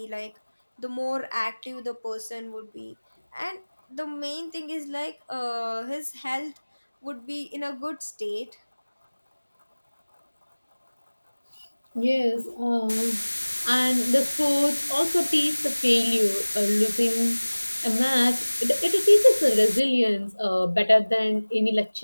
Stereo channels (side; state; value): both; inverted; correlation -1.00